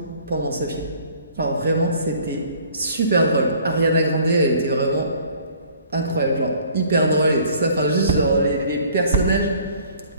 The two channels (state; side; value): inverted; both; correlation -0.54